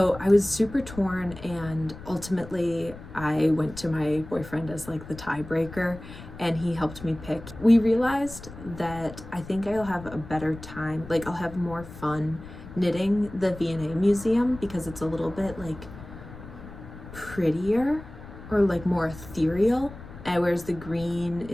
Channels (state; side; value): noise; left; rumble, 15 dB below the sound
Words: I was super torn, and ultimately I went to my boyfriend as like the tiebreaker, and he helped me pick. We realized that I think I'll have a better time, like I'll have more fun knitting the V&A Museum because it's a little bit like prettier or like more ethereal, and whereas the green